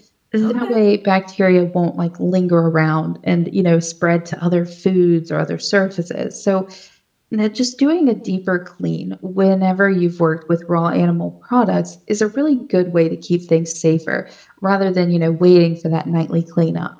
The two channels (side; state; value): both; identical; correlation 1.00